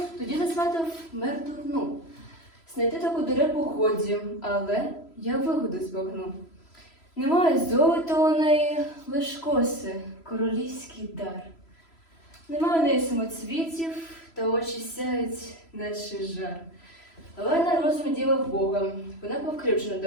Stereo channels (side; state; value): right; late; 3.0 ms